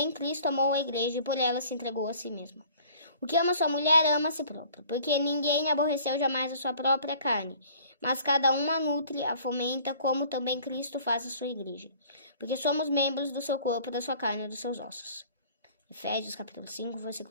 Cristo amou a igreja e por ela se entregou a si mesmo. O que ama sua mulher, ama a si próprio, porque ninguém aborreceu jamais a sua própria carne, mas cada um a nutre, a fomenta, como também Cristo faz a sua igreja, porque somos membros do seu corpo, da sua carne e dos seus ossos. Efésios capítulo 5,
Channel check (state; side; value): inverted; both; correlation -0.52